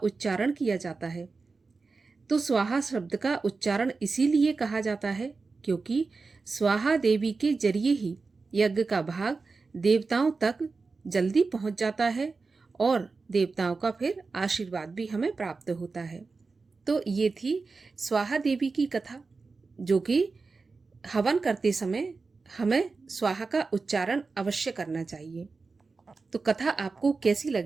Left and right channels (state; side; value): quieter; left; 4.2 dB